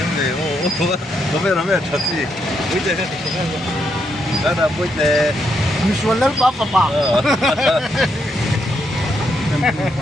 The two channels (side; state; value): both; normal; correlation 0.78